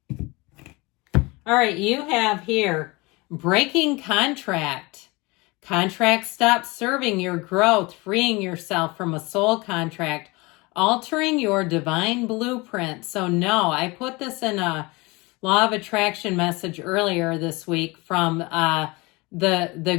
All right, you have here breaking contract. Contract stops serving your growth, freeing yourself from a soul contract, altering your divine blueprint. So no, I put this in a Law of Attraction message earlier this week from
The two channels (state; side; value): quieter; right; 24.7 dB